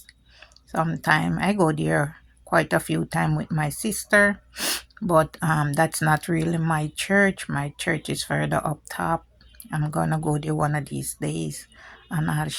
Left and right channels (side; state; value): both; identical; correlation 1.00